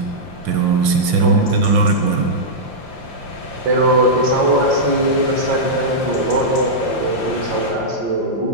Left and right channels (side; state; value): left; late; 5.7 ms